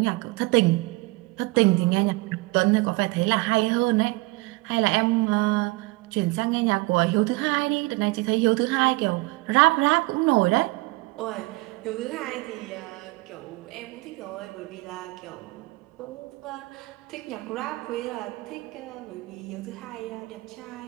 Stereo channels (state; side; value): quieter; left; 23.4 dB